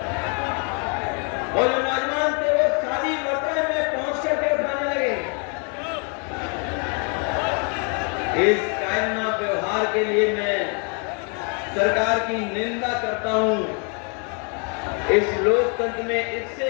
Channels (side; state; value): right; quieter; 38.0 dB